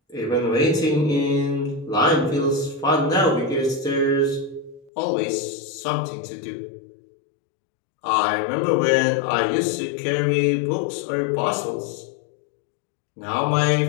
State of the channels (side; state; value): right; drops out; at 4.9 s